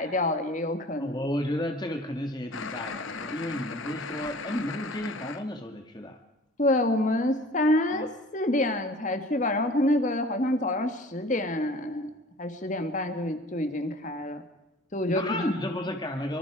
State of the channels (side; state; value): both; normal; correlation 0.46